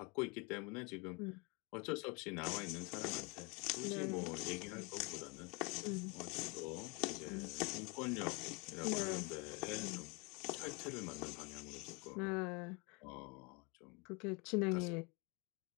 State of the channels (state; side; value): quieter; right; 30.1 dB